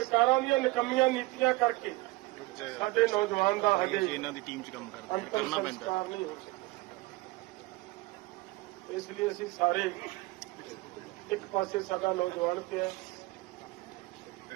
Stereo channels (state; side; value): quieter; left; 21.4 dB